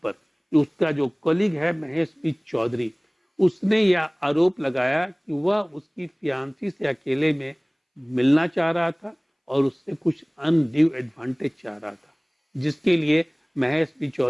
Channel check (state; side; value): identical; both; correlation 1.00